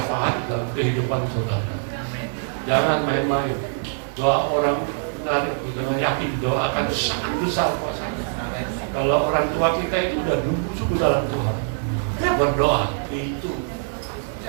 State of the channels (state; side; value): silent; left; 63 dB below the other